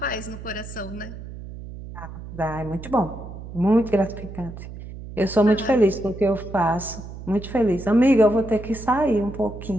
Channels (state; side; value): noise; right; hum, 12 dB below the sound